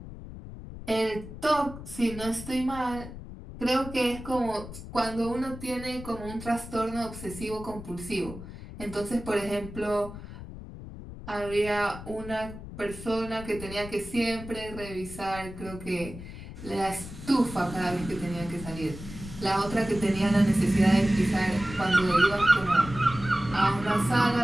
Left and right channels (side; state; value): left; noise; rumble, 12 dB below the sound